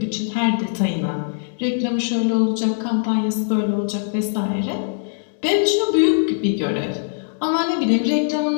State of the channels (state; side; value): silent; right; digital silence